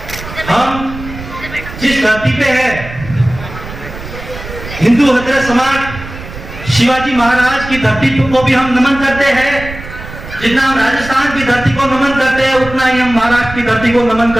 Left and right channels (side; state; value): right; noise; rumble, 12 dB below the sound